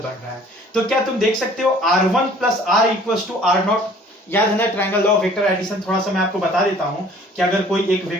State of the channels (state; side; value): normal; both; correlation 0.53